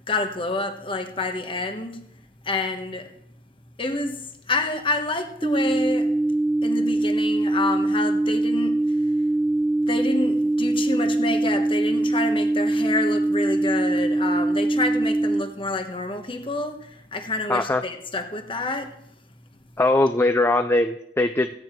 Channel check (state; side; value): normal; both; correlation 0.72